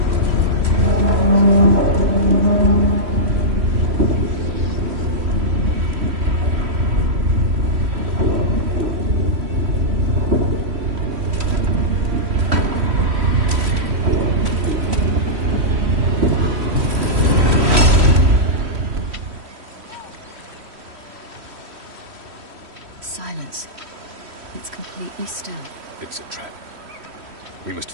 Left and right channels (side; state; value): left; late; 3.1 ms